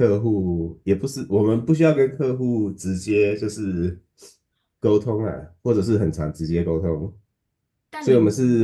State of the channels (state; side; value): identical; both; correlation 1.00